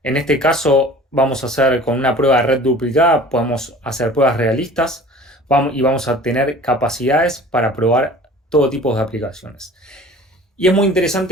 En este caso vamos a hacer con una prueba de red duplicada, podemos hacer pruebas realistas y vamos a tener capacidades para probar todo tipo de aplicaciones. Y es muy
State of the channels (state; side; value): normal; both; correlation 0.45